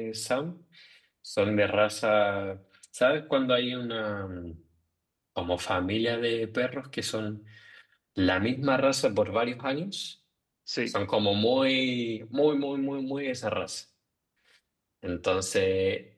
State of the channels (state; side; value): identical; both; correlation 1.00